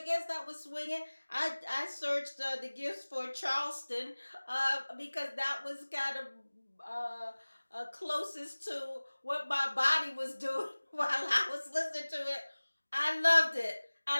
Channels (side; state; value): both; inverted; correlation -1.00